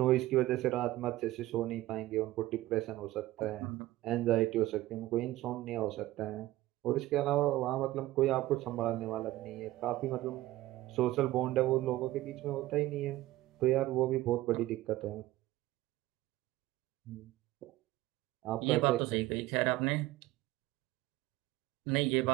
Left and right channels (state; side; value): quieter; left; 16.7 dB